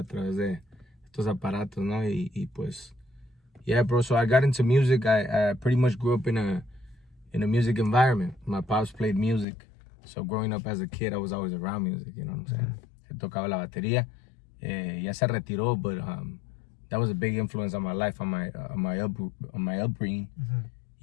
través de estos aparatos, ¿no? Y pues, yeah, bro. So I got into music. I pretty much grew up in a music environment. My pops played music. So growing up as a kid, I was always around music, you know what I'm saying? Él tocaba la batería. Ya se retiró, but that was a big influence on my life, on my upbringing.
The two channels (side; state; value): right; drops out; at 9.5 s